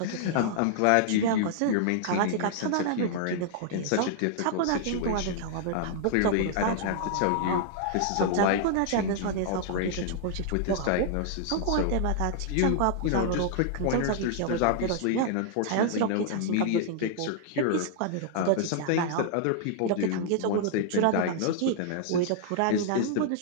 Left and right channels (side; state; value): both; different; correlation -0.01